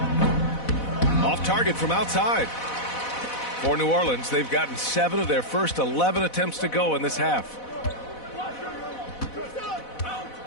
Off target from outside. For New Orleans, they've gotten 7 of their first 11 attempts to go in this half.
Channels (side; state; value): right; late; 4.1 ms